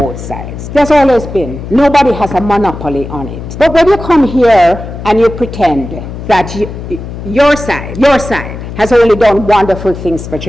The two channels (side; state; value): left; noise; hum, 10 dB below the sound